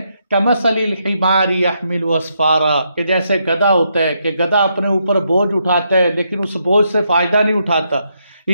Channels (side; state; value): both; inverted; correlation -0.78